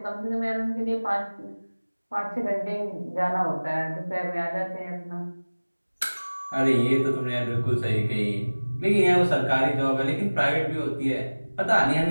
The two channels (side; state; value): both; inverted; correlation -1.00